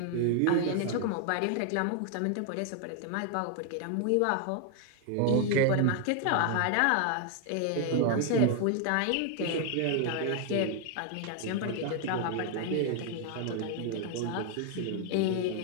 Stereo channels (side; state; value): both; different; correlation 0.00